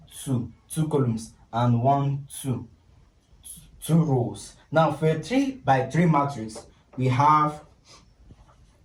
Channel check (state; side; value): identical; both; correlation 1.00